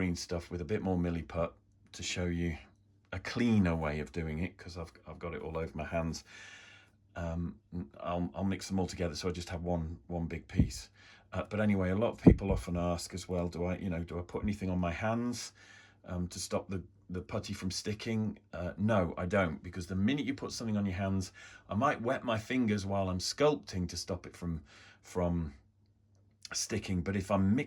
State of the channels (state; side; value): identical; both; correlation 1.00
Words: stuff with a bit more milliput to show you a cleaner way of doing it, because I've got it all over my hands, I'll mix them all together, so I just have one big piece. But anyway, a lot of people often ask as well, do I put anything on my hands to stop the putty from sticking? No, I don't, because the minute you put something on your hands, I might wet my fingers while I'm sculpting to stop it from sticking. But if I'm